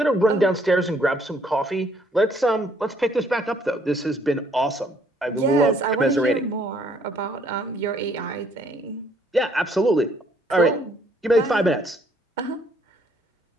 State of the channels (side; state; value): both; normal; correlation 0.65